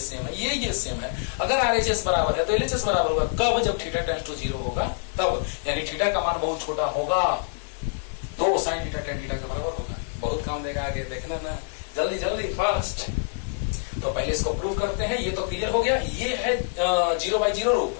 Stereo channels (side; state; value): right; silent; 57 dB below the other